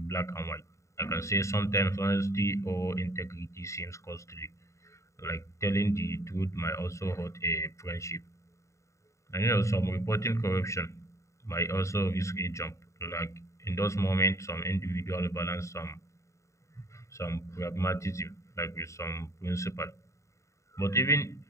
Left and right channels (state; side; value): late; right; 0.14 ms